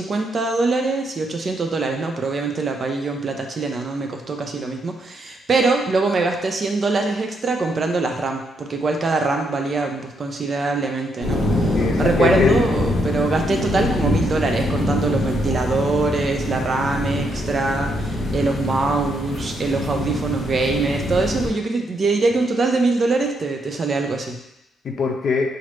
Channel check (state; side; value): normal; both; correlation 0.77